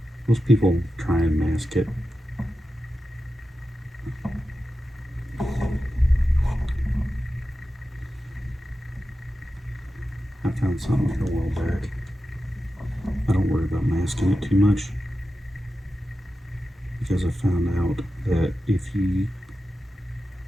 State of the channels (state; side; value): normal; both; correlation 0.92